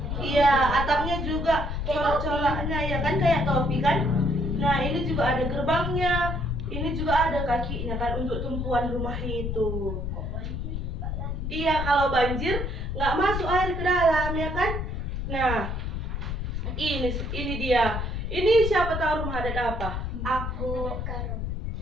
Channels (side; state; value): left; noise; rumble, 3 dB below the sound